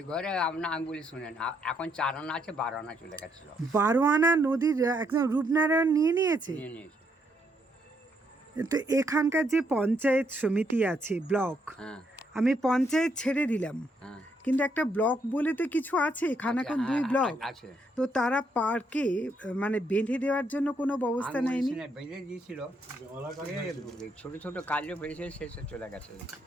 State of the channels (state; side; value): normal; both; correlation 0.75